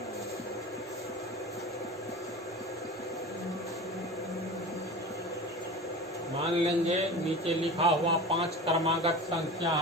मान लेंगे नीचे लिखा हुआ 5 क्रमागत संख्या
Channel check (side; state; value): both; normal; correlation 0.33